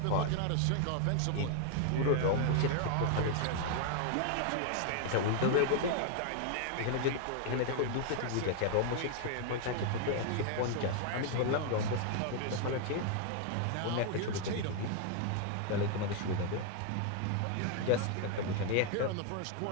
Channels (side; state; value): both; different; correlation 0.00